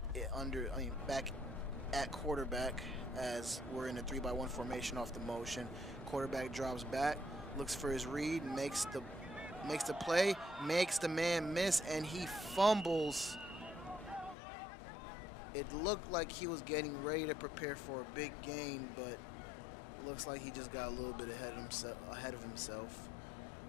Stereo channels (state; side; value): drops out; right; at 14.4 s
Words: at quarterback as we're in a 3-by-1 formation off the motion. Quarterback drops back, looks for his read, makes the play, makes the man miss, and he fumbles. It looked like he was getting ready to prepare for a big gain, but looks like he just got a little bit ahead of himself.